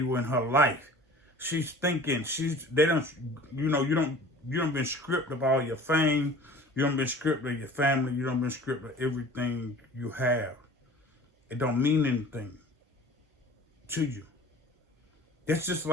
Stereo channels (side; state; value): both; normal; correlation 0.44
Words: her life. She's thinking you don't been stripped of all your fame, you don't been stripped of your family, you don't been stripped of everything you have. It don't mean anything to you. It's just